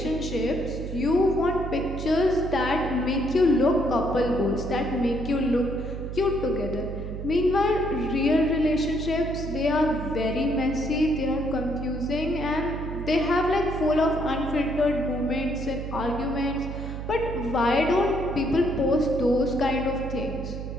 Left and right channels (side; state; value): right; noise; hum, 7 dB below the sound